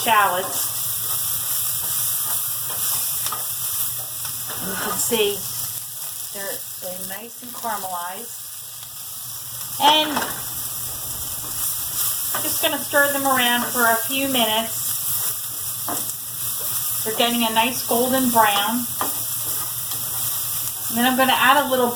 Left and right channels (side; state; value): both; identical; correlation 1.00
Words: And you can see they're nice and caramelized. And I'm just going to stir them around for a few minutes. They're getting a nice golden brown. And then I'm going to add a little